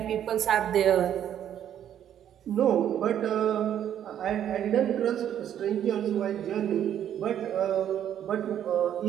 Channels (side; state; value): left; quieter; 10.2 dB